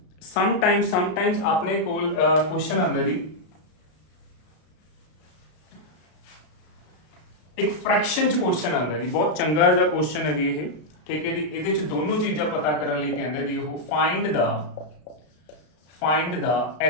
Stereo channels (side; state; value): right; late; 33 ms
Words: ਆਪਣੇ ਕੋਲ ਕੁਐਸਚਨ ਆਉਂਦਾ ਜੀ, ਇੱਕ ਫ੍ਰੈਕਸ਼ਨ ਚ ਕੁਐਸਚਨ ਆਉਂਦਾ ਜੀ। ਬਹੁਤ ਚੰਗਾ ਜਿਹਾ ਕੁਐਸਚਨ ਹੈ ਜੀ ਇਹ, ਠੀਕ ਹੈ ਜੀ। ਇਹਦੇ ਚ ਦੋਨੋਂ ਚੀਜ਼ਾਂ ਪਤਾ ਕਰਨ ਲਈ ਕਹਿੰਦਾ ਜੀ ਉਹ find the